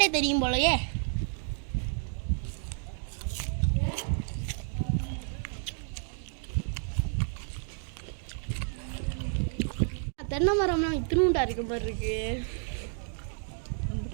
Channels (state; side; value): silent; left; 57 dB below the other